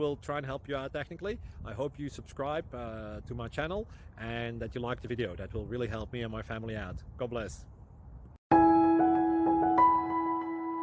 try and help you out technically. I hope you subscribe to my channel and that you like the video. That will really help me and my family out. God bless.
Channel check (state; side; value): identical; both; correlation 1.00